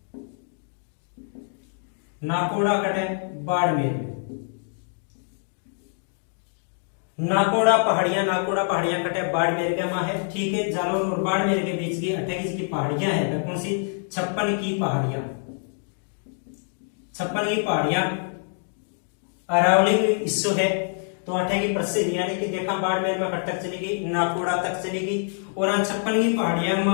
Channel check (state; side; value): silent; right; 61 dB below the other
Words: नाकोड़ा कटे बाड़मेर में, नाकोड़ा पहाड़ियां कटे बाड़मेर के वहां है। ठीक है, जालौर और बाड़मेर के बीच की 28 की पहाड़ियां है। कौन सी? 56 की पहाड़ियां, 56 की पहाड़ियां अरावली हिस्सो है। तो 8 की प्रसिद्ध, यानी कि देखा बाड़मेर में कट तक चलेगी, नाकोड़ा तक चलेगी। और 56 की पहाड़ियां